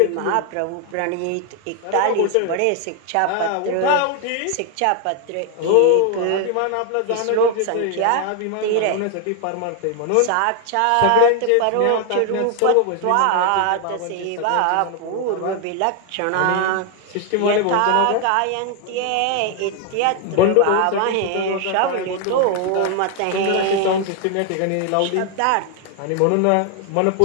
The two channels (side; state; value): both; different; correlation 0.01